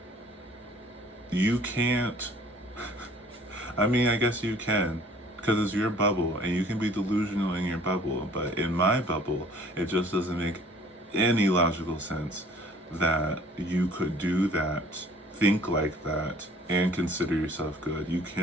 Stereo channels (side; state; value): both; normal; correlation 0.54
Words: you can't, I mean, I guess you can, because it's your bubble and you can be delusional in your bubble. But in my bubble, it just doesn't make any logical sense that you could do that, think like that, and consider yourself good. You